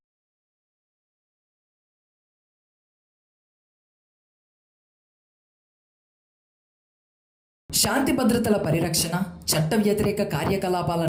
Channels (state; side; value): identical; both; correlation 1.00